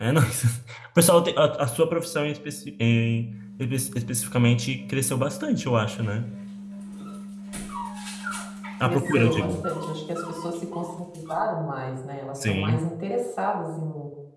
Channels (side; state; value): both; identical; correlation 1.00